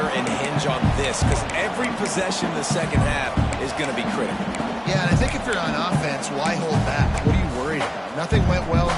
and hinge on this? Because every possession in the second half is going to be critical. Yeah, and I think if you're on offense, why hold back? What are you worried about? Nothing went well in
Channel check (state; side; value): identical; both; correlation 1.00